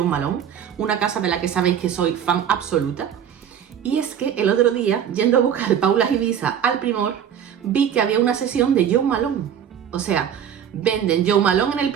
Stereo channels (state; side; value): quieter; left; 8.9 dB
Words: Malone, una casa de la que sabéis que soy fan absoluta. Y es que el otro día, yendo a buscar Paula Ibiza al Primor, vi que había una sesión de Jo Malone. O sea, venden Jo Malone en el